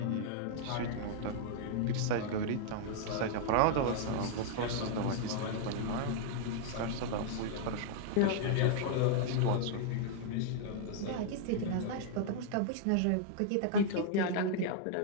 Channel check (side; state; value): both; different; correlation -0.01